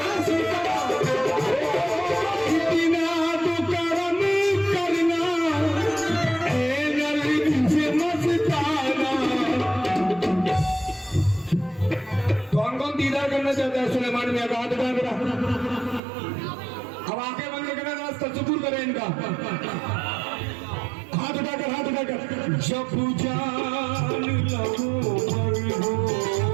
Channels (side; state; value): left; drops out; at 16.0 s